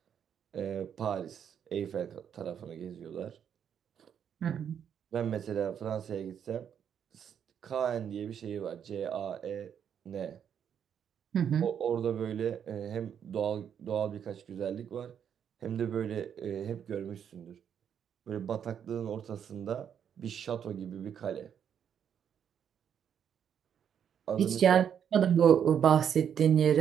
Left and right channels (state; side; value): quieter; left; 8.4 dB